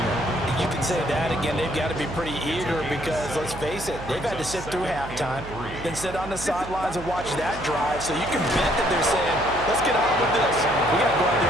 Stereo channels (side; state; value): right; noise; hum, 12 dB below the sound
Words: You can say that again. They've got to be pretty eager because, let's face it, they've had to sit through halftime, then sit on the sidelines and watch that drive. So you can bet that they're saying, let's get on with this. We got to go out there